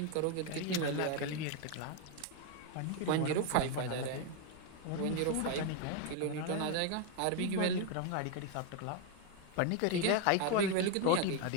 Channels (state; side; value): different; both; correlation 0.01